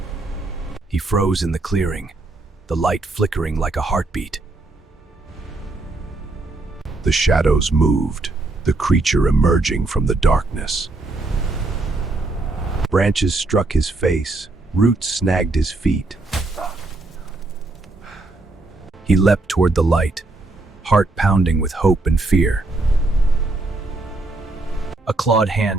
He froze in the clearing, the light flickering like a heartbeat. The shadows moved, the creature emerging from the darkness. Branches struck his face, roots snagged his feet. He leapt toward the light, heart pounding with hope and fear. A clawed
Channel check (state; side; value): quieter; left; 3.1 dB